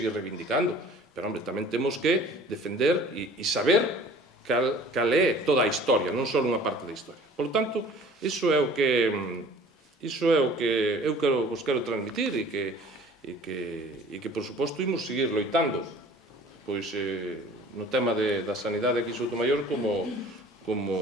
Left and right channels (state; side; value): normal; both; correlation 0.48